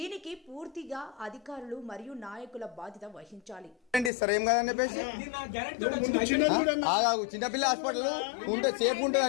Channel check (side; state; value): right; drops out; at 4.1 s